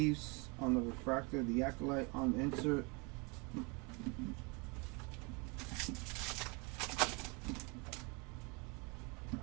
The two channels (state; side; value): quieter; left; 30.6 dB